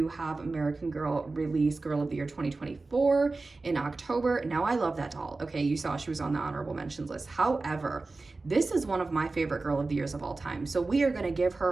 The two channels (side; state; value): left; quieter; 3.5 dB